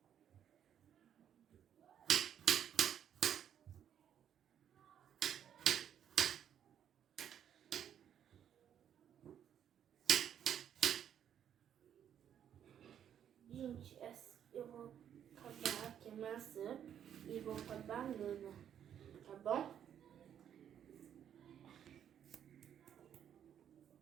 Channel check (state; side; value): quieter; left; 9.4 dB